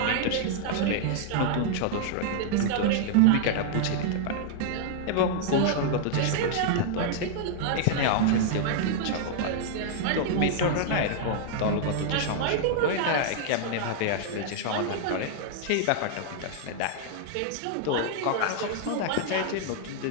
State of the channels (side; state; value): both; different; correlation -0.01